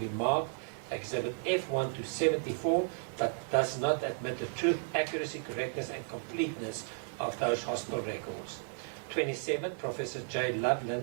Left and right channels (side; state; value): left; silent; 55 dB below the other